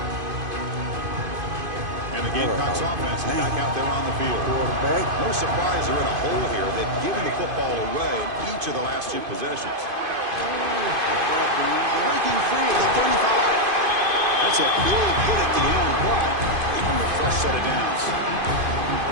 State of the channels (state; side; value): late; left; 2.5 ms